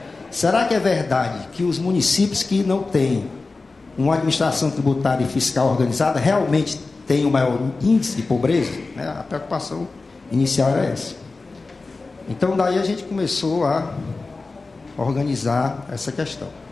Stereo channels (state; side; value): quieter; right; 3.7 dB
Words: será que é verdade que os municípios que não têm uma administração tributária e fiscal organizada realmente têm o maior índice de pobreza? A preocupação inicial era essa. Então, daí a gente começou a organizar essa questão,